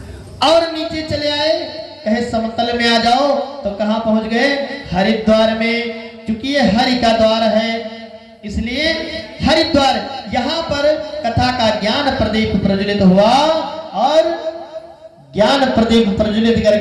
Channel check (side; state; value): both; identical; correlation 1.00